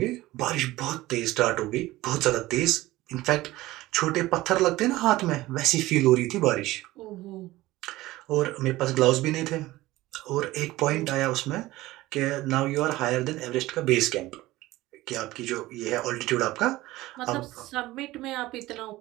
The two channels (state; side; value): quieter; left; 17.8 dB